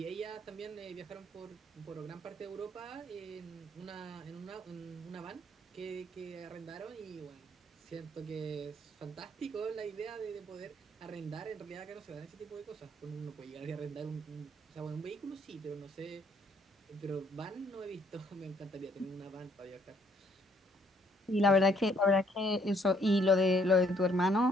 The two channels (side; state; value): both; normal; correlation 0.66